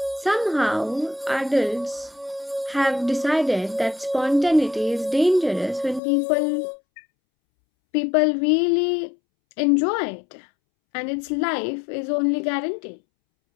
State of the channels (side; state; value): right; drops out; at 6.0 s